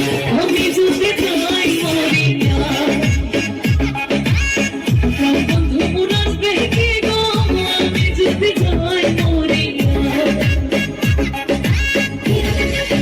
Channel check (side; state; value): both; identical; correlation 1.00